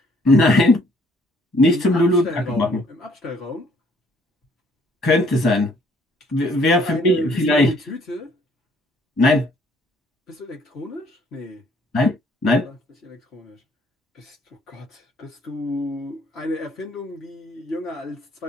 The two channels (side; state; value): both; normal; correlation 0.63